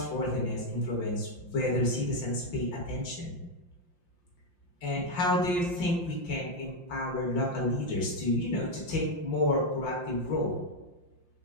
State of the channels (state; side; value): late; right; 5.7 ms